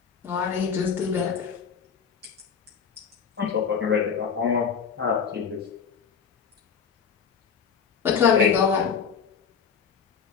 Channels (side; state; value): right; quieter; 6.6 dB